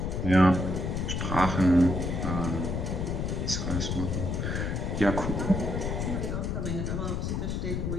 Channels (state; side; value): noise; left; rumble, 1 dB below the sound